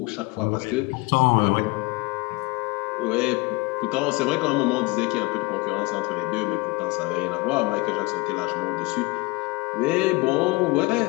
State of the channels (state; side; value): quieter; right; 24.4 dB